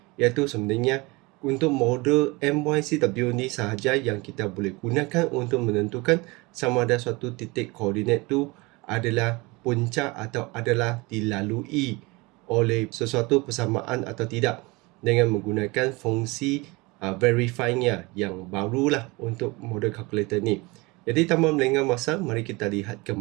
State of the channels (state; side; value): quieter; left; 24.6 dB